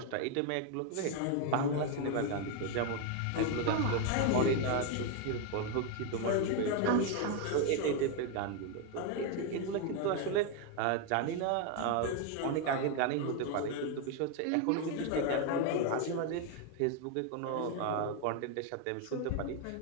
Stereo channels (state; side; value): different; both; correlation 0.01